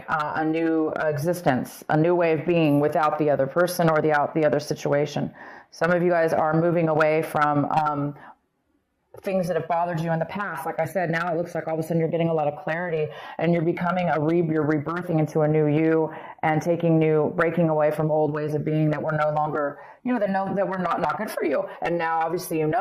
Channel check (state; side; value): identical; both; correlation 1.00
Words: a new existence, a new way of being without the other person or the other situation. Some of you guys are moving away from things that have bothered you in the past. Like I said, now it looks like all of a sudden you're getting a lot of clarity and you're becoming you're rebirthing into a new you and breaking away from old ways of being that were no longer, that were not good for you. And now obviously